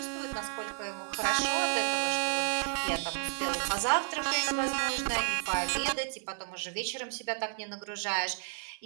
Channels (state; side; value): silent; left; 56 dB below the other